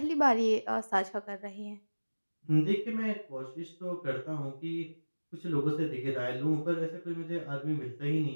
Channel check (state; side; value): inverted; both; correlation -1.00